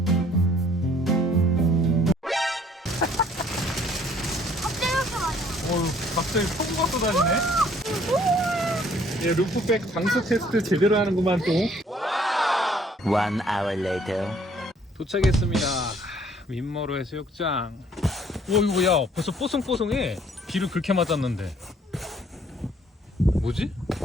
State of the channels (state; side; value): normal; both; correlation 0.60